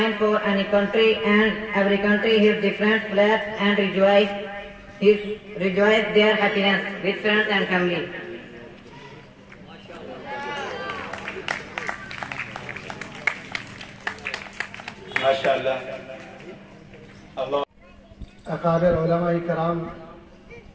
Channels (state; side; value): identical; both; correlation 1.00